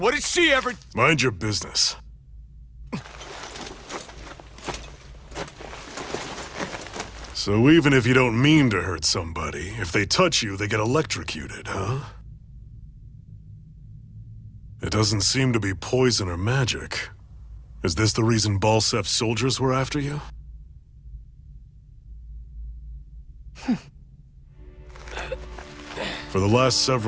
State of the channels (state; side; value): identical; both; correlation 1.00